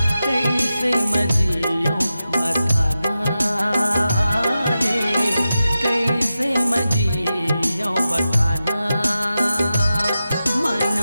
कैसे मजियो बताना रे कैसे मजियो बताना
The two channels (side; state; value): both; inverted; correlation -0.92